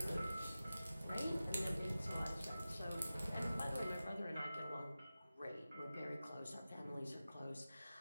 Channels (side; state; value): both; inverted; correlation -0.95